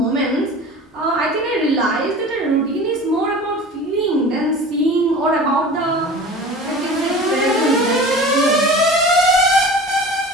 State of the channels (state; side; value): normal; both; correlation 0.38